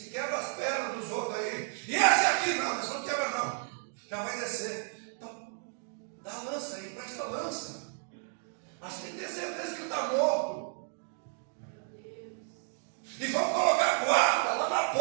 quebra as pernas dos outros aí. E esse aqui não, mas não quebra não. Já vai descer. Então, dá a lança aí, presta a lança. Mas tem que ter certeza que ele está morto. E vamos colocar guarda lá na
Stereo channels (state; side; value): silent; left; 56 dB below the other